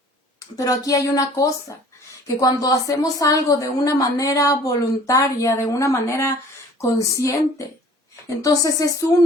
Pero aquí hay una cosa, que cuando hacemos algo de una manera voluntaria, de una manera consciente, entonces es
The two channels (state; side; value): normal; both; correlation 0.50